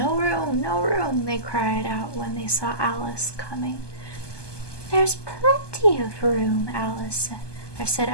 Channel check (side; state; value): right; late; 1.2 ms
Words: room, no room, they cried out when they saw Alice coming. There's plenty of room, said